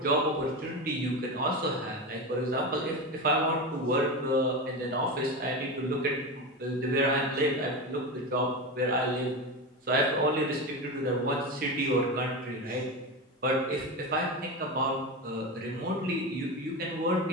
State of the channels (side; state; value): both; normal; correlation 0.20